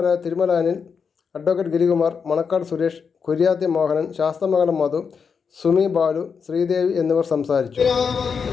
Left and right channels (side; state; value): right; quieter; 6.0 dB